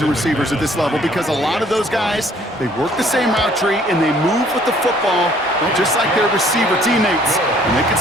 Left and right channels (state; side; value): normal; both; correlation 0.60